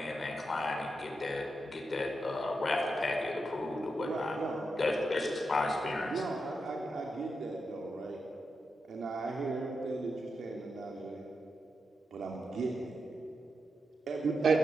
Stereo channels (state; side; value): normal; both; correlation 0.86